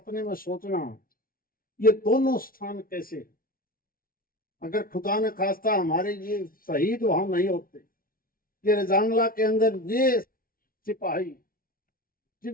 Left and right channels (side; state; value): right; late; 0.42 ms